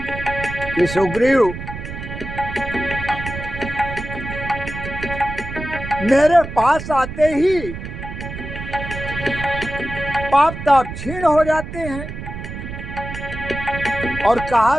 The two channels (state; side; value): noise; right; rumble, 8 dB below the sound